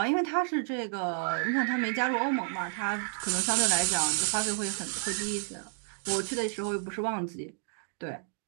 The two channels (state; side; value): silent; left; digital silence